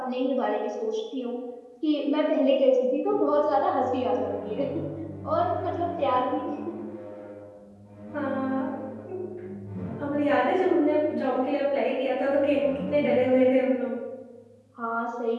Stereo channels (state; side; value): identical; both; correlation 1.00